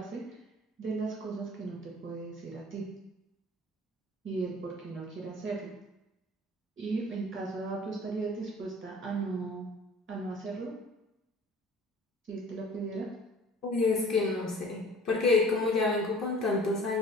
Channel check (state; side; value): normal; both; correlation 0.48